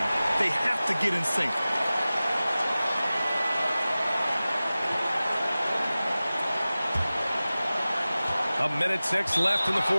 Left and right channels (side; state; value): both; inverted; correlation -0.97